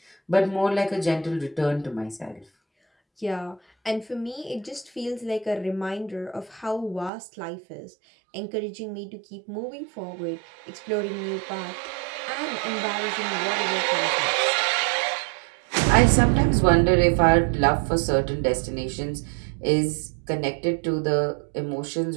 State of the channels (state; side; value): drops out; left; at 7.1 s